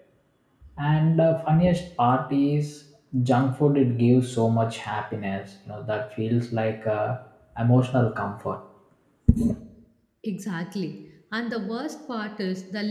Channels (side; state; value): both; identical; correlation 1.00